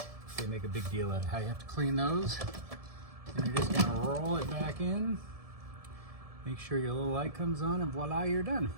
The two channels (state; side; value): late; left; 1.7 ms